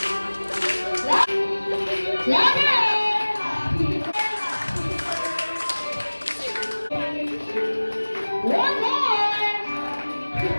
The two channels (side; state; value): both; inverted; correlation -1.00